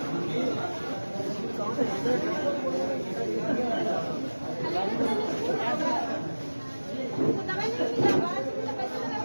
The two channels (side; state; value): both; inverted; correlation -1.00